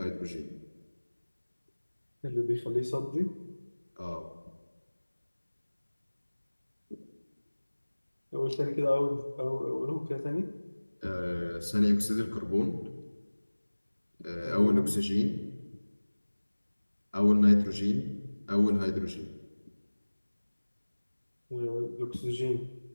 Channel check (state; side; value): inverted; both; correlation -1.00